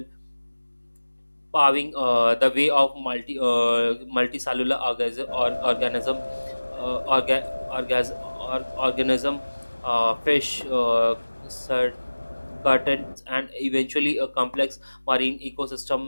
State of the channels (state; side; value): inverted; both; correlation -1.00